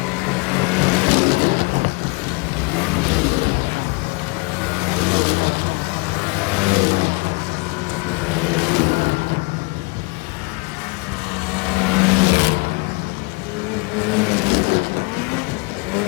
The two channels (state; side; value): quieter; right; 30.0 dB